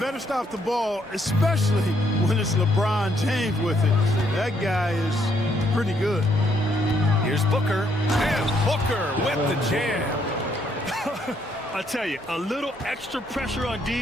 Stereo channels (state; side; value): normal; both; correlation 0.72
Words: stop the ball, especially when it's LeBron James with it. That guy is pretty good. Here's Booker. And Booker with the jam. I tell you, a little extra pressure on